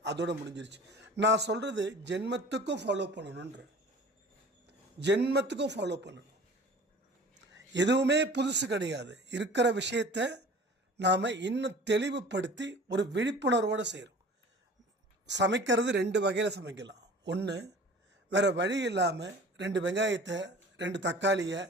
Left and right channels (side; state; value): both; normal; correlation 0.43